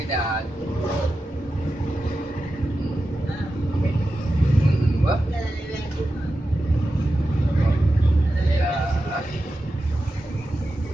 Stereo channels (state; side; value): normal; both; correlation 0.91